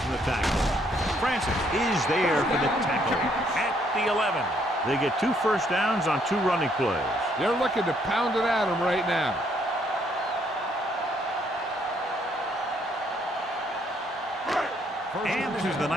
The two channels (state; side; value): normal; both; correlation 0.69